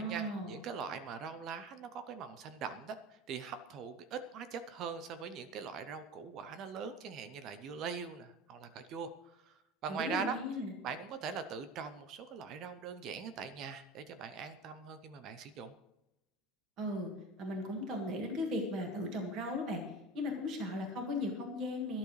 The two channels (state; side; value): normal; both; correlation 0.33